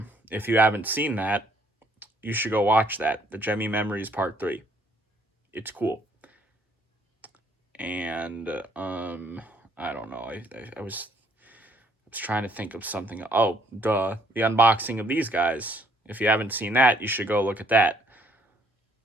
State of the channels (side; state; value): both; normal; correlation 0.65